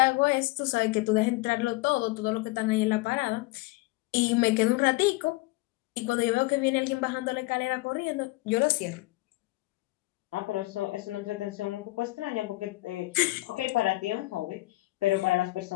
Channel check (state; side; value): quieter; right; 21.1 dB